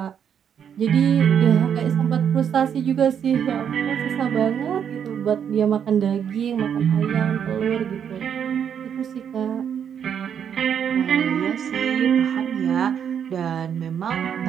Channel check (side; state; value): left; quieter; 8.2 dB